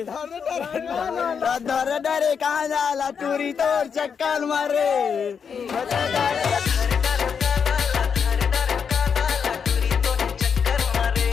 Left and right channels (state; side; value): quieter; right; 6.7 dB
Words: डर डरे कहाँ जाला टूरी तोर चक्कर मारे